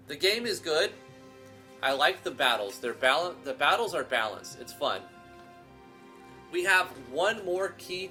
game is good. I like the battles. The battles are balanced. It's fun. We have one more key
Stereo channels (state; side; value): identical; both; correlation 1.00